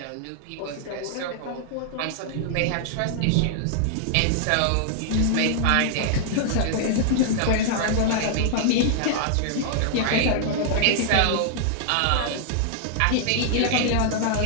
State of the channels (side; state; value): both; different; correlation -0.01